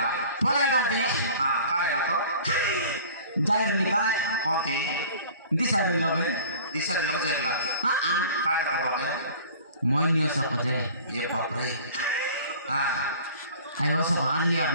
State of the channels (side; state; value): both; inverted; correlation -0.45